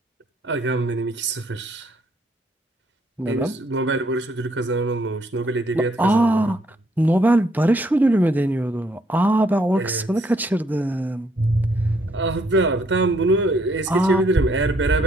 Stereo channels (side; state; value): both; normal; correlation 0.69